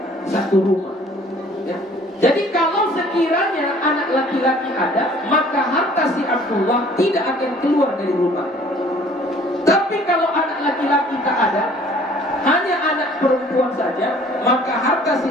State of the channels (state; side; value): normal; both; correlation 0.54